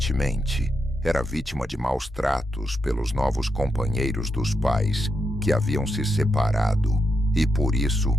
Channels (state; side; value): normal; both; correlation 0.83